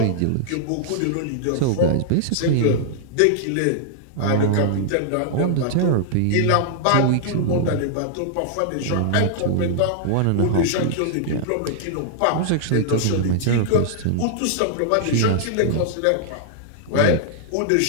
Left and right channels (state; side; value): different; both; correlation -0.01